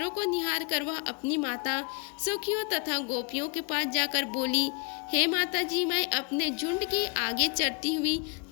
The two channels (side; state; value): right; quieter; 35.9 dB